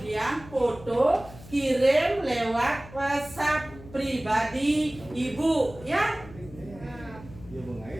foto kirim lewat WhatsApp pribadi Ibu ya.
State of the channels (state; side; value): noise; left; hum, 18 dB below the sound